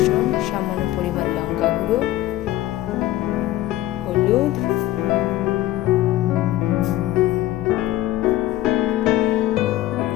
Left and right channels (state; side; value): quieter; right; 15.1 dB